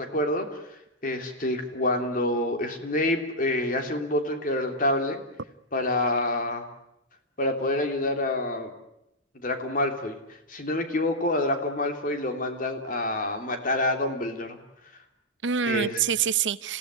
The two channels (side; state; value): both; normal; correlation -0.05